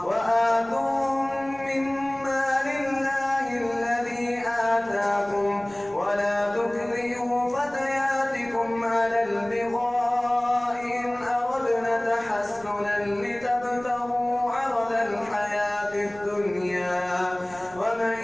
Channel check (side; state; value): right; noise; rumble, 23 dB below the sound